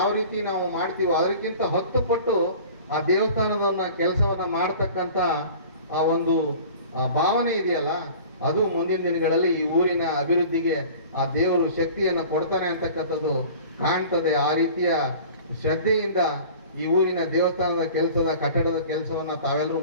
ರೀತಿ ನಾವು ಮಾಡ್ತೀವೋ ಅದಕ್ಕಿಂತ 10 ಪಟ್ಟು ಆ ದೇವಸ್ಥಾನದ ಕೆಲಸವನ್ನ ಮಾಡ್ತಕ್ಕಂಥ ಆ ಒಂದು ಭಾವನೆ ಇದೆಯಲ್ಲ, ಅದು ಮುಂದಿನ ದಿನಗಳಲ್ಲಿ ಈ ಊರಿನ ಅಭಿವೃದ್ಧಿಗೆ ಆ ದೇವರು ಶಕ್ತಿಯನ್ನು ಕೊಡ್ತಾನೆ ಅಂತಕ್ಕಂಥದ್ದು ಕಾಣ್ತದೆ. ಆ ರೀತಿಯ ಶ್ರದ್ಧೆಯಿಂದ ಈ ಊರಿನ ದೇವಸ್ಥಾನದ ಕೆಲಸದ ಕಟ್ಟಡದ ಕೆಲಸವನ್ನ ತಾವೆಲ್ಲರೂ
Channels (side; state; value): both; inverted; correlation -0.43